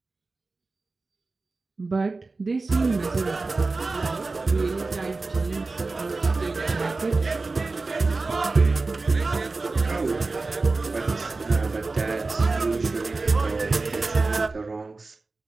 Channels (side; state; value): left; quieter; 3.6 dB